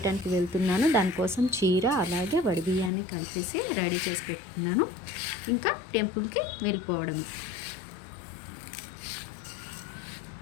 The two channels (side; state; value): right; drops out; at 2.9 s